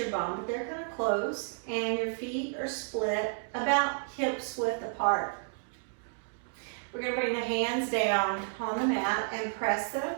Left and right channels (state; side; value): silent; left; digital silence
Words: bum, but they're kind of close, and your feet are split about hips width apart. We're going to bring the hands down on the mat and press them.